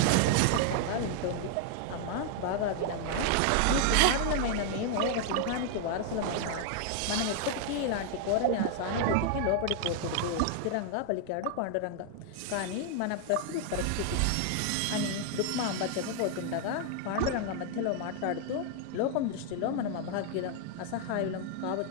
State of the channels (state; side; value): different; both; correlation 0.00